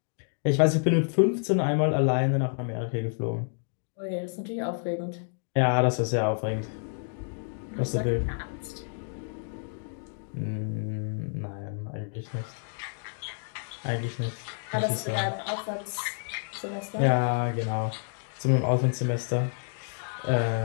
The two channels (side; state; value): right; silent; digital silence